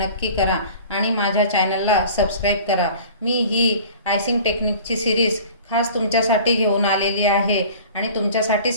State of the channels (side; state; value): both; inverted; correlation -0.44